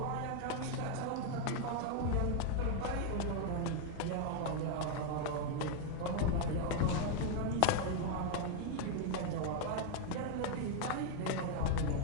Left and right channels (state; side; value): different; both; correlation 0.00